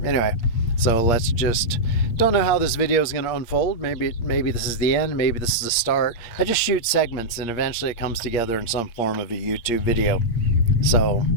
Anyway, so let's just, don't know how this video is going to unfold. Maybe this is the end, maybe this is the start. I just shoot segments and eventually it comes together in some form of a YouTube video. So,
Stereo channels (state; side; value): late; right; 8.6 ms